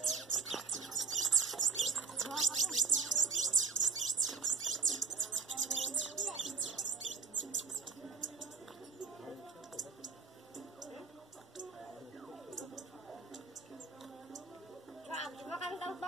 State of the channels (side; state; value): left; quieter; 4.8 dB